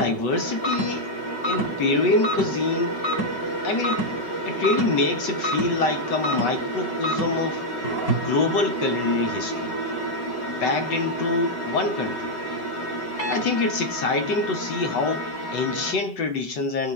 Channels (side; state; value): right; late; 5.3 ms